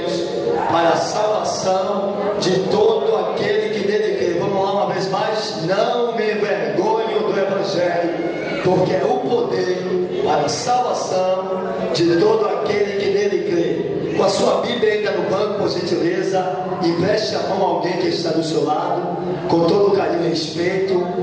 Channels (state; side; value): identical; both; correlation 1.00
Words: para a salvação de todo aquele que nele crê. Vamos lá uma vez mais. Não me envergonho do Evangelho, porque é o poder para a salvação de todo aquele que nele crê. Com a sua Bíblia ainda no banco, por gentileza, empreste a mão a alguém que está do seu lado, com todo carinho e respeito.